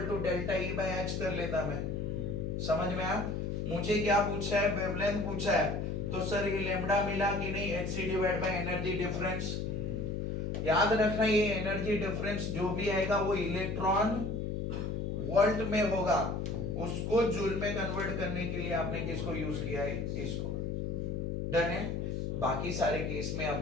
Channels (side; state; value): left; noise; hum, 2 dB below the sound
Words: to delta E by H कर लेता मैं। समझ में आया? मुझे क्या पूछा है? वेवलेंथ पूछा है। तो सर ये लैम्डा मिला कि नहीं? hc divide by energy difference. याद रखना ये एनर्जी डिफरेंस जो भी आएगा वो इलेक्ट्रॉन वोल्ट में होगा, उसको जूल में कन्वर्ट करने के लिए आपने किसको यूज किया है? इसको। डन है? बाकी सारे केस में